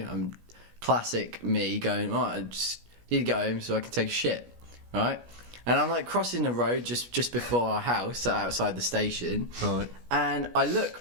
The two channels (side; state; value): left; late; 17 ms